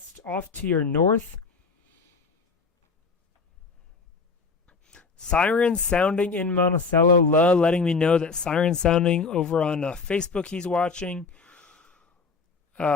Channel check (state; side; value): quieter; right; 4.6 dB